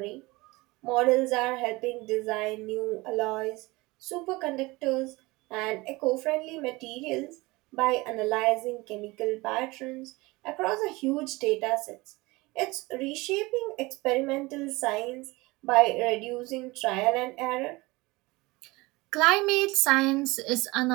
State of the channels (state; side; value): quieter; left; 22.4 dB